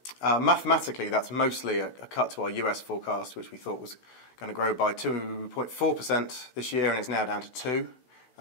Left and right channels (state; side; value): late; right; 16 ms